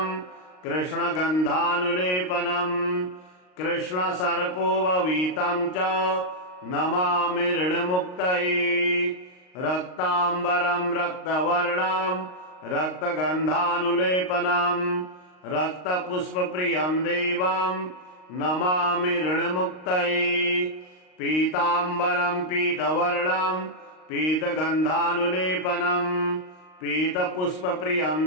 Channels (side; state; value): right; late; 38 ms